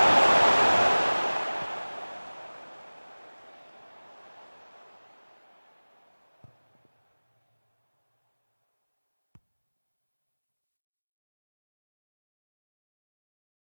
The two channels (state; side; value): inverted; both; correlation -1.00